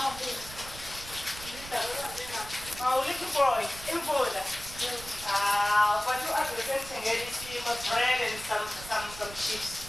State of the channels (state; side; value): noise; right; rumble, 14 dB below the sound